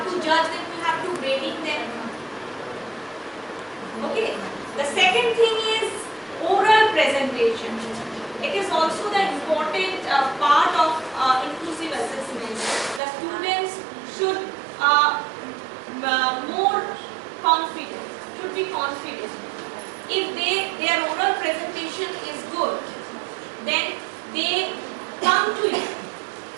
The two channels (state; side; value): drops out; left; at 13.0 s